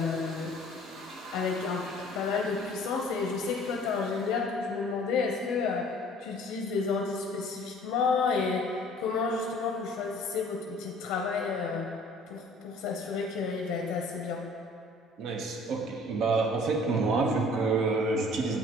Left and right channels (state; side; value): normal; both; correlation 0.52